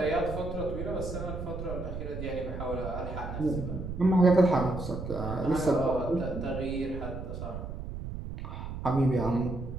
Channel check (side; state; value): right; noise; rumble, 7 dB below the sound